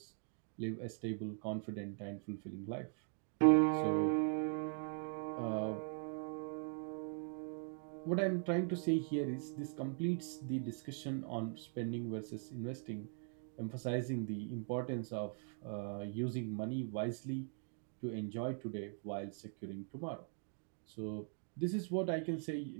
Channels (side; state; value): left; silent; 50 dB below the other